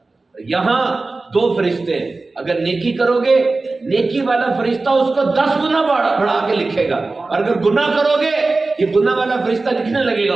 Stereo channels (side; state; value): left; quieter; 3.5 dB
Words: یہاں 2 فرشتے ہیں، اگر نیکی کرو گے نیکی والا فرشتہ اس کو 10 گنا بڑھا کے لکھے گا، اور اگر گناہ کرو گے یہ گناہ والا فرشتہ لکھنے لگے گا،